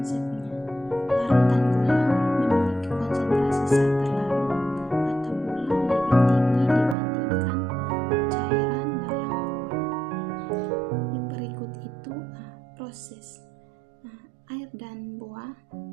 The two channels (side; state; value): left; drops out; at 7.0 s